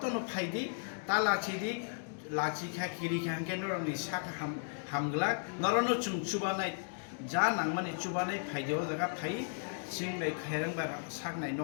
फाइदि तालासिदि लाचिखा किरिखा के नरकनि साका हामग्ला नरनो जों चुबानाय जा नांमानि चुबानाय फाइदियाव जागा फाइ सिंनाय खेरेंबार साकनाय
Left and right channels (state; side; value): silent; right; digital silence